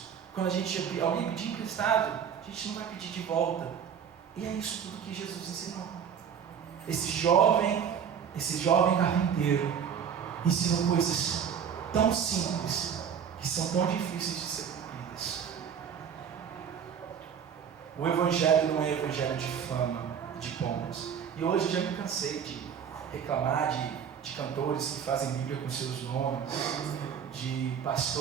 Quando alguém pedir emprestado, a gente não vai pedir de volta. E é isso tudo que Jesus ensinou. Esse jovem esse jovem carpinteiro ensinou coisas tão simples que são tão difíceis de ser cumpridas. O evangelho não é evangelho de fama, de pombas. E hoje eu já me cansei de reclamar de cantores que fazem Bíblia com seus nomes, de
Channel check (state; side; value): quieter; left; 7.8 dB